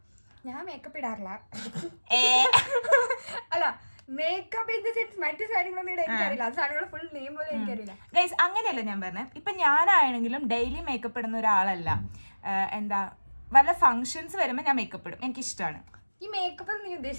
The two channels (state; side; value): inverted; both; correlation -1.00